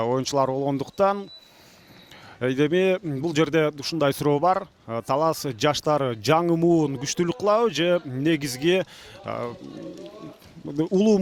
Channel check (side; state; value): both; identical; correlation 1.00